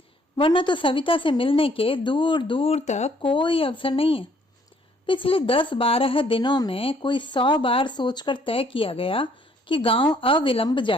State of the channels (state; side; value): normal; both; correlation 0.64